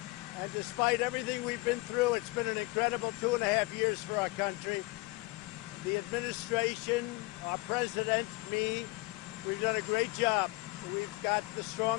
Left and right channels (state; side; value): quieter; right; 23.0 dB